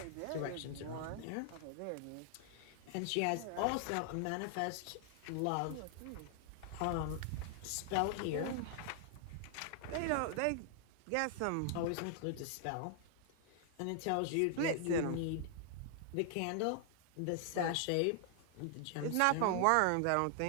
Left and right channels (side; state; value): both; different; correlation 0.00